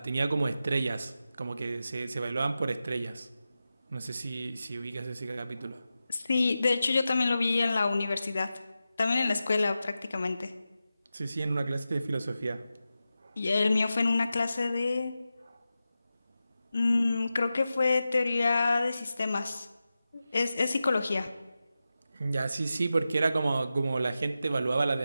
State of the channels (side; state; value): both; inverted; correlation -0.92